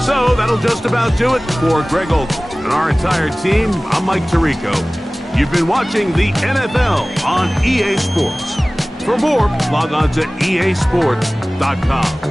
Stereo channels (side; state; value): both; normal; correlation 0.98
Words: So that'll just about do it for Greg Olson and our entire team. I'm Mike Tirico. You've been watching the NFL on EA Sports. For more, log on to easports.com.